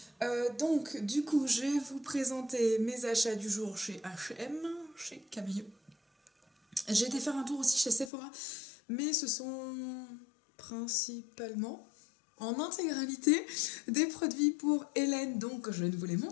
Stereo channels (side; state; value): right; drops out; at 8.1 s